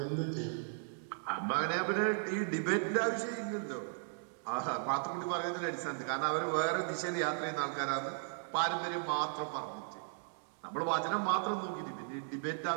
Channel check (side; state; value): left; silent; digital silence